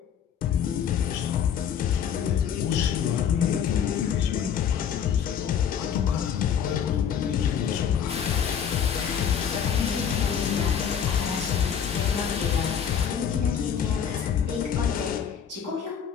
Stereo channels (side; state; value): right; quieter; 8.1 dB